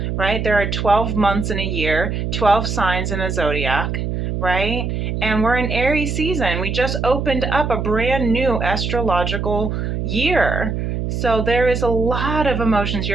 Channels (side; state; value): right; noise; hum, 2 dB below the sound